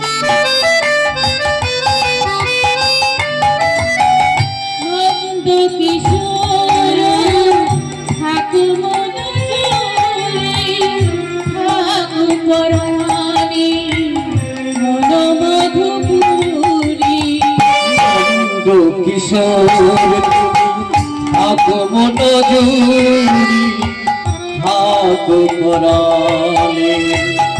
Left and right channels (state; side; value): identical; both; correlation 1.00